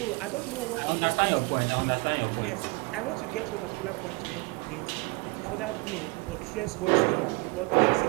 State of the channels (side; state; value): left; quieter; 27.4 dB